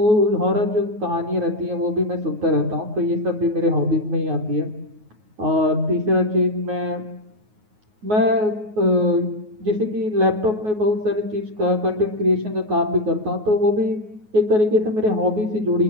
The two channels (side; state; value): left; late; 9.4 ms